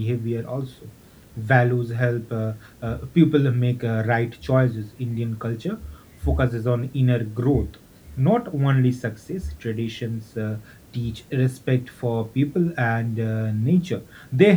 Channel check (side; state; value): both; identical; correlation 1.00